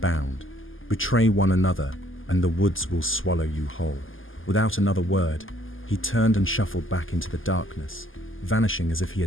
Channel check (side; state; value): right; late; 0.58 ms